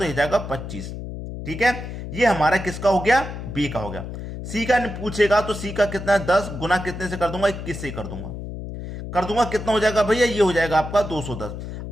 हो जाएगा 25, ठीक है। ये हमारा किसका हो गया? बी का हो गया। सी का पूछेगा तो सी का कितना है? 10 गुना कितने से कर दूंगा? 21 से कर दूंगा, कितना हो जाएगा भैया? ये हो जाएगा आपका 210।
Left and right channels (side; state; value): left; noise; hum, 8 dB below the sound